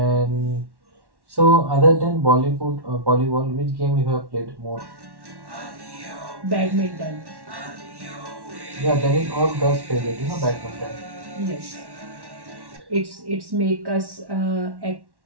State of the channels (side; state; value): left; late; 1.1 ms